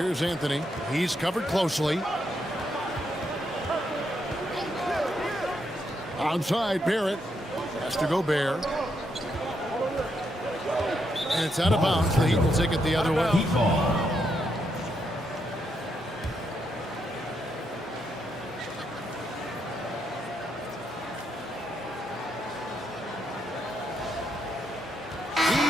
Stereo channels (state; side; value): normal; both; correlation 0.79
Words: Anthony. He's covered closely. Outside, Barrett. Has to go Gobert. And it's out of bounds. The Heat will take it the other way. Heat ball.